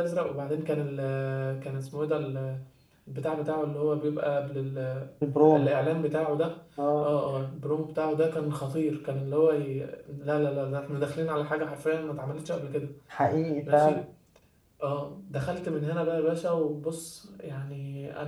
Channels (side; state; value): both; identical; correlation 1.00